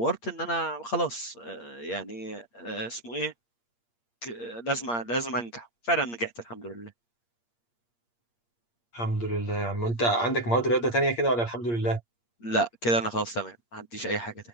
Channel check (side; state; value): right; late; 8.6 ms